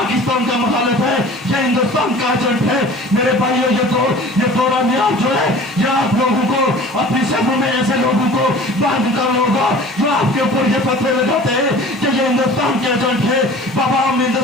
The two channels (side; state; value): both; normal; correlation 0.43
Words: का मुखालिफ है, ये हिंदुस्तान का एजेंट है। मेरे भाइयों ये दौरा मियाद जो है ये आप लोगों को अपनी शहरों में ऐसे लोगों को बांध कर होगा जो आपके ऊपर ये फतवे लगाते हैं कि ये हिंदुस्तान के एजेंट है। बाबा हम